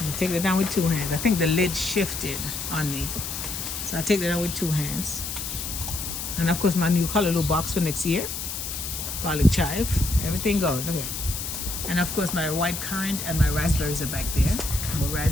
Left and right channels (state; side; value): noise; left; hiss, 5 dB below the sound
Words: gonna take that down with two hands. I think the lid shifted on me. So I'll take that down with two hands. And of course my new colorloo box for next year. Garlic chive, everything going, okay. And of course my white currant and my raspberries are back there. More